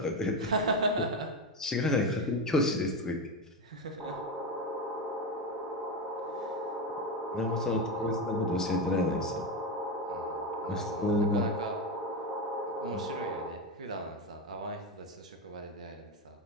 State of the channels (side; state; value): both; normal; correlation 0.14